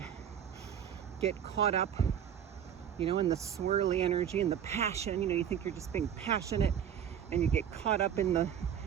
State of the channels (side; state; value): left; quieter; 9.0 dB